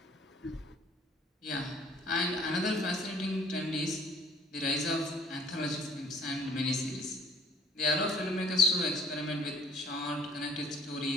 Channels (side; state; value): both; normal; correlation 0.54